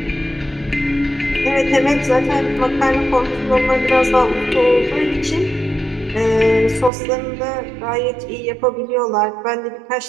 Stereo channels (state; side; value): drops out; left; at 6.9 s